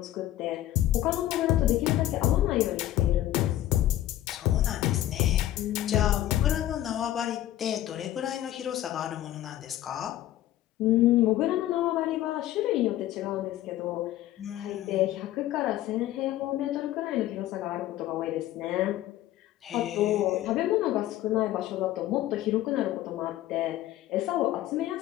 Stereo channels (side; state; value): right; quieter; 13.8 dB